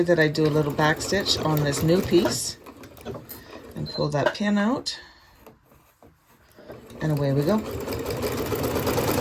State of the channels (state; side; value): identical; both; correlation 1.00